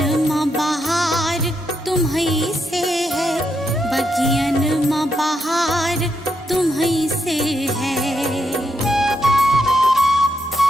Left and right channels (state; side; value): normal; both; correlation 0.80